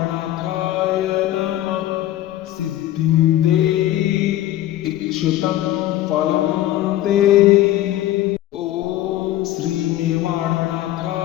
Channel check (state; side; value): quieter; right; 13.9 dB